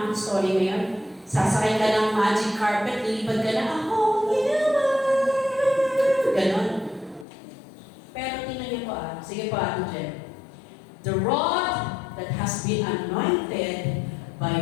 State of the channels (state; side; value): drops out; right; at 7.2 s